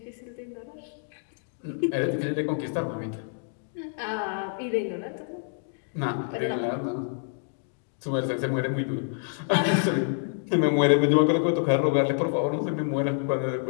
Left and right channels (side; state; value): right; silent; digital silence